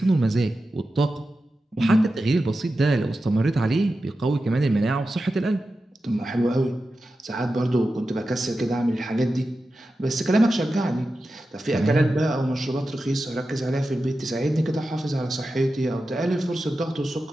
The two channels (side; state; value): both; normal; correlation 0.92